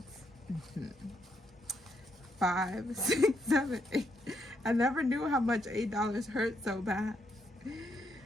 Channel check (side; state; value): both; normal; correlation 0.77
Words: 5, 6, 7, 8. I never knew how much $8 hurt so bad.